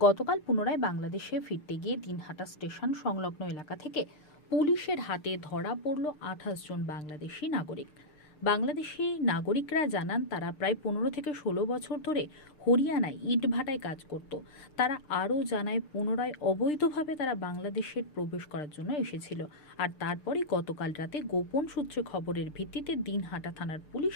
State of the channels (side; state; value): right; late; 6.6 ms